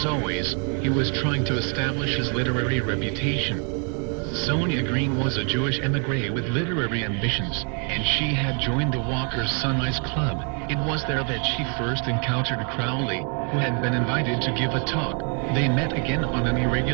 always, he was trying to establish his literary reputation. Sonia Green was a Jewish émigré with literary ambitions, and she had joined the Walker's Sunrise Club. It was there that she first encountered Crowley, who had been invited to give a talk. They met again on an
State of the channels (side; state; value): left; quieter; 38.8 dB